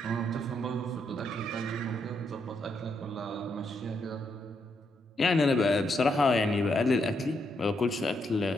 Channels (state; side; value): normal; both; correlation 0.78